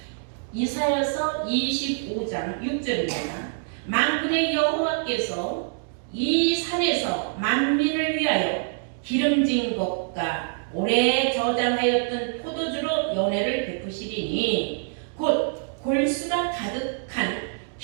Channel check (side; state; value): left; silent; digital silence